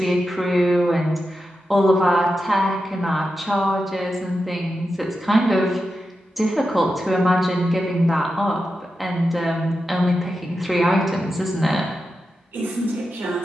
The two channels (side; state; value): both; normal; correlation 0.90